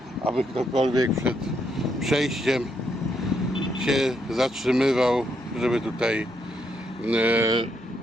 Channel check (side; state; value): both; normal; correlation 0.77